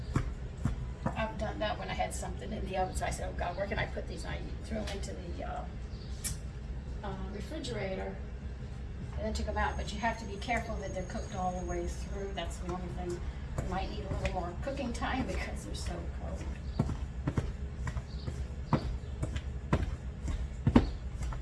I've done that when I had something in the oven, so I said, oh God, where can I put these? And I threw them into the refrigerator and then took them out. But you have to be careful that they're cooked all the way through. That's the only thing. You might need a little more cooking time because they're so cold.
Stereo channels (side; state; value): both; identical; correlation 1.00